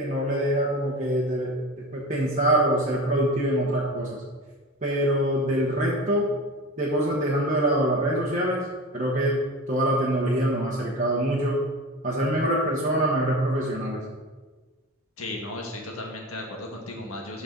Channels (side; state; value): both; normal; correlation 0.31